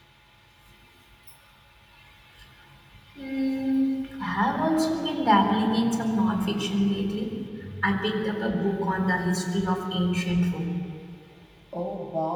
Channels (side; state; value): both; identical; correlation 1.00